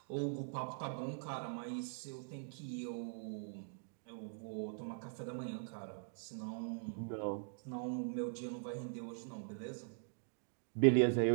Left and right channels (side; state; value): left; silent; digital silence